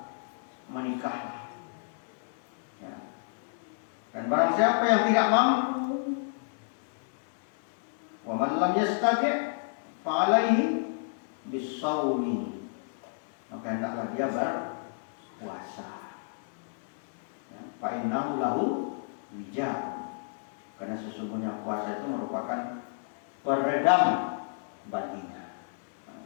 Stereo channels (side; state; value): right; silent; digital silence